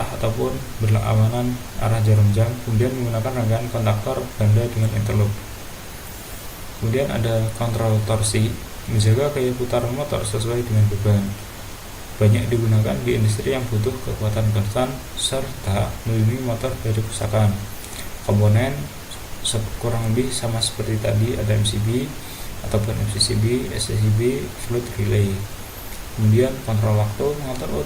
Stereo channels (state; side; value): identical; both; correlation 1.00